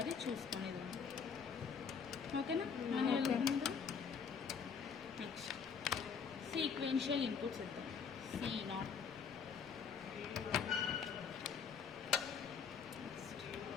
చూసుకునేది. ఓకేనా? నెక్స్ట్ సీక్వెన్షియల్ ఇన్పుట్స్ ఇద్దాం. C0,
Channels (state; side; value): quieter; right; 6.3 dB